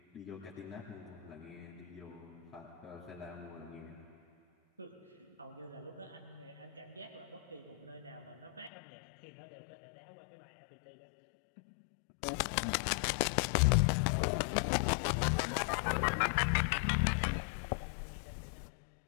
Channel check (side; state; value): right; drops out; at 8.7 s